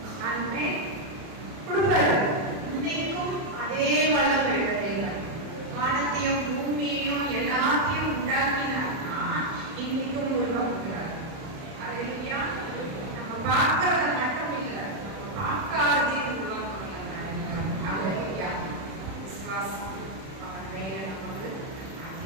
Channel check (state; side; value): late; left; 31 ms